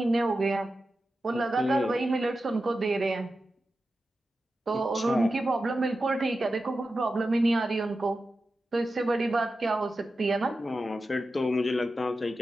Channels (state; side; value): normal; both; correlation 0.92